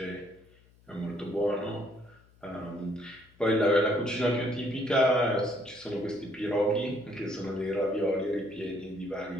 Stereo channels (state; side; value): noise; left; hum, 29 dB below the sound